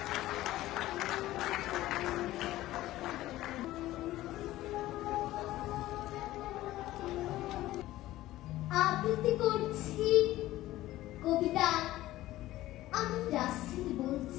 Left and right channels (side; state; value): right; quieter; 15.8 dB